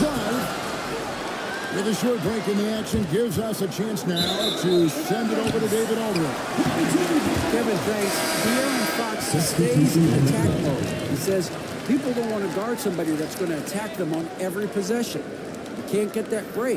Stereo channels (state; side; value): identical; both; correlation 1.00